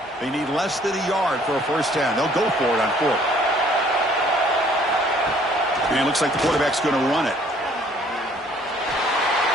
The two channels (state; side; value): normal; both; correlation 0.59